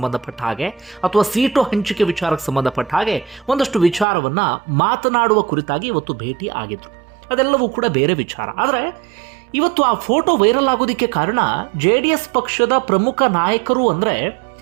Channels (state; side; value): drops out; left; at 4.0 s